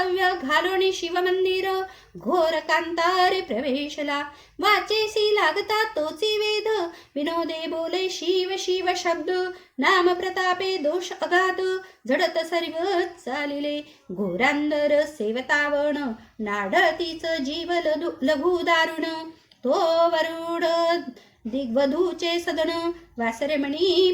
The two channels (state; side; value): identical; both; correlation 1.00